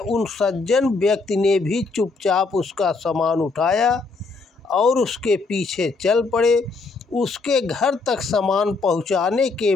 सज्जन व्यक्ति ने भी चुपचाप उसका सामान उठाया और उसके पीछे चल पड़े। उसके घर तक सामान पहुंचाने के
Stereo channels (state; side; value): quieter; right; 4.0 dB